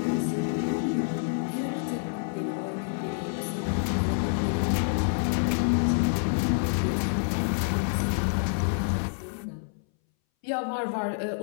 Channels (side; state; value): right; silent; 60 dB below the other